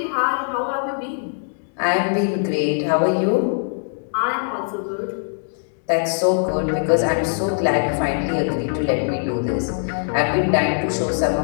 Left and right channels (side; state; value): right; silent; digital silence